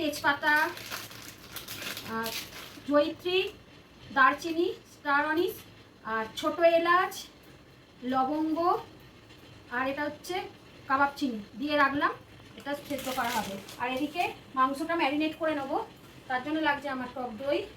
জয়িত্রী, দারচিনি, স্টার অনিস, আর ছোটো এলাচ, লবঙ্গ, আর এটা হচ্ছে কাবাব চিনি দিয়ে রাখলাম। এটা সেদ্ধ করা হবে। আর এদিকে মাংসটা ম্যারিনেট করে নেবো, তার জন্য লাগছে আমার টক দই,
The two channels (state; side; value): identical; both; correlation 1.00